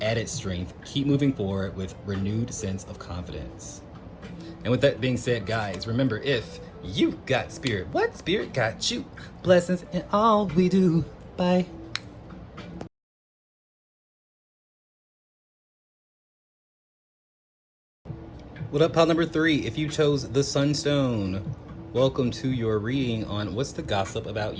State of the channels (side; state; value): both; identical; correlation 1.00